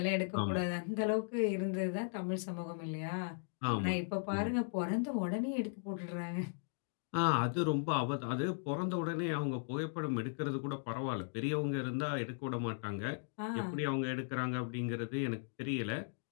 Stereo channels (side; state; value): right; silent; digital silence